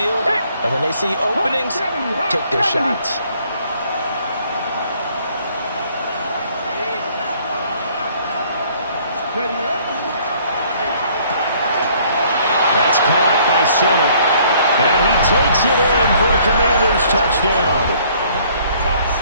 And when they see openings, take their shots. That's caught by Sennett. And he takes it in for a Commanders touchdown.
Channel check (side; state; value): both; inverted; correlation -0.60